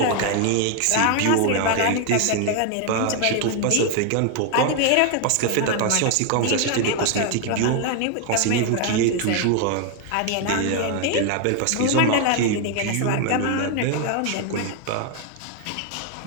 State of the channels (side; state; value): both; different; correlation 0.01